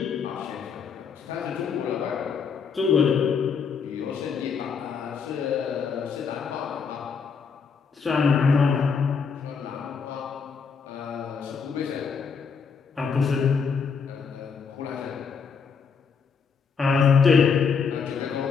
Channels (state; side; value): quieter; right; 5.8 dB